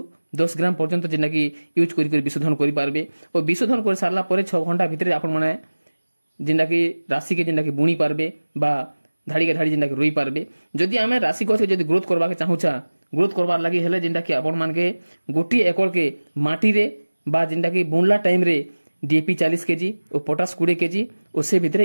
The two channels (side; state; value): both; inverted; correlation -1.00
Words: 10 ग्राम पर्यंत जिनटा कि यूज करी विशोधन करि पारबे। और विशोधन कर सारला परे 6 घंटा भीतर आपण माने जिनटा कि राशि के जिनटा कि बुणी पारबे बा धाड़ी के धाड़ी जिनटा कि रोई पारबे। जदि आमे राशि गछ के जदि ग्रोथ करबा के चाहुचा ग्रोथ करबार लागि हेले जिनटा कि आपण मान के गोटी एकड़ के माटी रे बा जिनटा कि बुनला टाइम रे डीएपी 40 केजी और पोटास 20 केजी और से भीतर